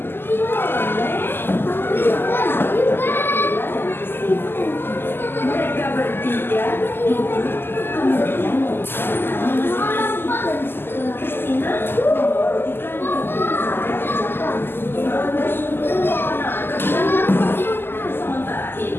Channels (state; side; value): late; right; 0.10 ms